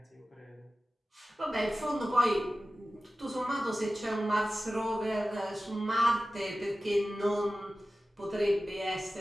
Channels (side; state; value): both; normal; correlation 0.95